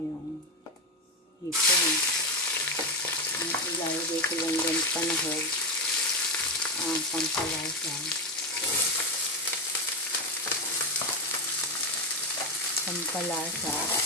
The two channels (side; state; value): both; normal; correlation 0.11